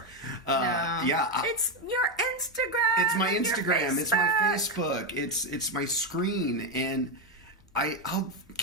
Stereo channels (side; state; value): both; normal; correlation 0.08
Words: No. Yeah, it's your Instagram. It's my Instagram. It's my Facebook. It's my screen, and I'll